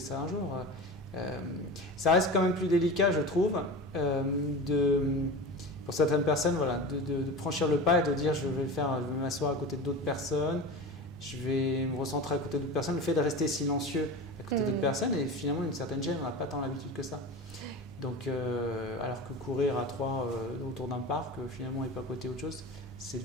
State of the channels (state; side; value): normal; both; correlation 0.30